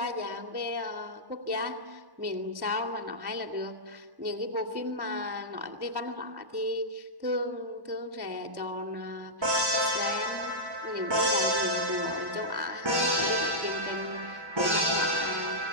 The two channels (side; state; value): left; late; 1.1 ms